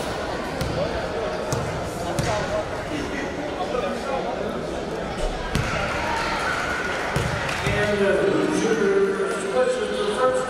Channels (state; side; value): identical; both; correlation 1.00